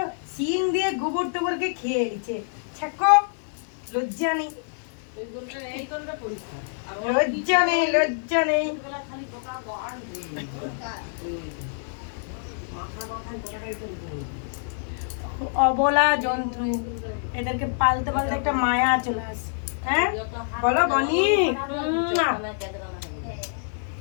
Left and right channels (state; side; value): silent; right; digital silence